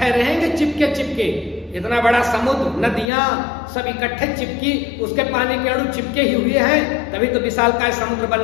रहेंगे चिपके। इतना बड़ा समुद्र, नदियां सब इकट्ठे चिपकी, उसके पानी के अणु चिपके ही हुए हैं, तभी तो विशालकाय समुद्र बन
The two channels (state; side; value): drops out; right; at 3.1 s